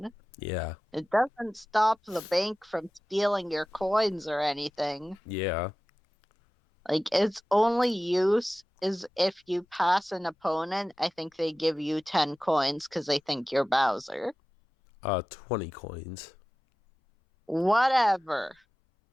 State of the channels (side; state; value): both; normal; correlation 0.95